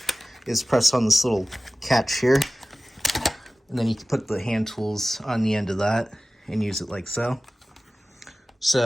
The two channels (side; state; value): both; normal; correlation 0.97